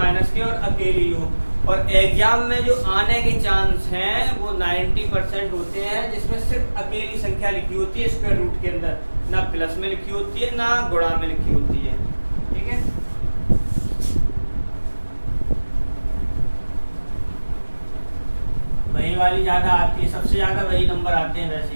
के और अकेली हो। और एग्जाम में जो आने के चांस हैं वो 90% होते हैं, जिसमें सिर्फ अकेली संख्या लिखी होती है स्क्वायर रूट के अंदर, ना प्लस में लिखी होती है ना गुणा में लिखी होती है, ठीक है। वही वाली ज्यादा आती है, सबसे ज्यादा वही नंबर आते हैं वैसे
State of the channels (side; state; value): both; inverted; correlation -1.00